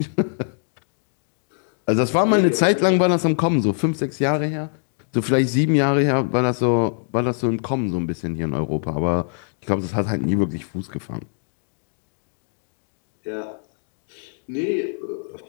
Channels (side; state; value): right; silent; digital silence